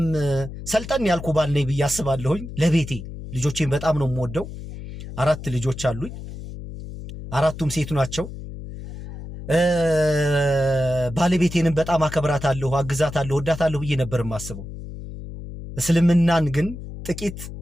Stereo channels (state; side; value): noise; left; hum, 11 dB below the sound